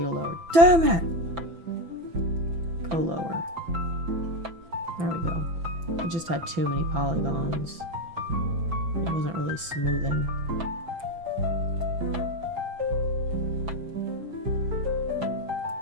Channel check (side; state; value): left; late; 6.0 ms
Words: a lower. Damn it! Go lower. There we go. It just had too many polygons. It wasn't really smoothing.